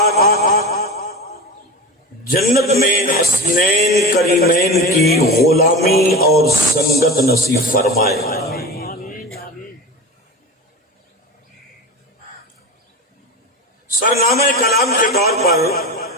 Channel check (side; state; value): both; normal; correlation 0.27